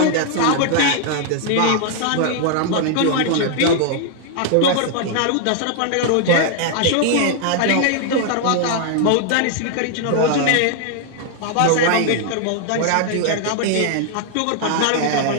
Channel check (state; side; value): different; both; correlation 0.00